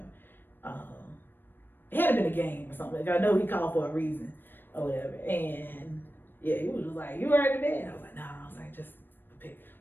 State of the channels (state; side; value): late; right; 0.095 ms